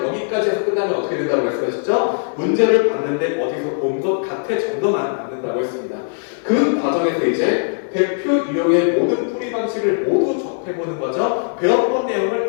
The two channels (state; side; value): silent; right; 62 dB below the other